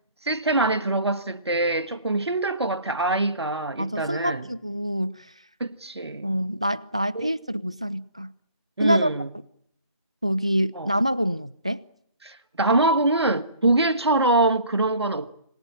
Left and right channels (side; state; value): both; inverted; correlation -0.54